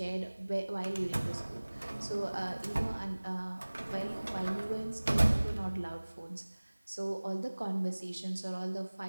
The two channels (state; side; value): inverted; both; correlation -1.00